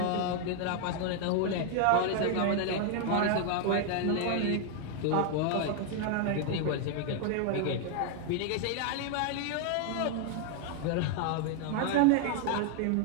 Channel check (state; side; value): different; both; correlation 0.00